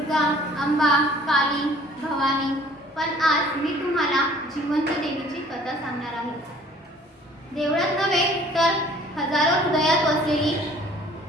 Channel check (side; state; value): both; normal; correlation 0.54